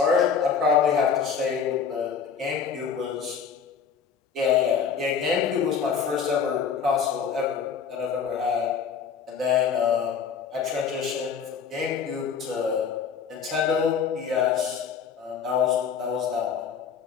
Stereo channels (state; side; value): quieter; right; 6.6 dB